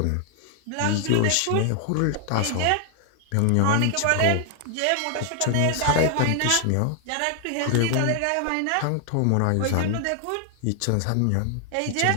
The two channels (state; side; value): different; both; correlation 0.00